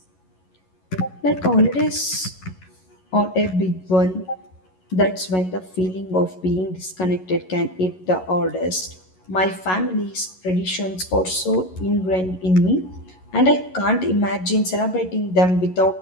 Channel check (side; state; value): right; late; 11 ms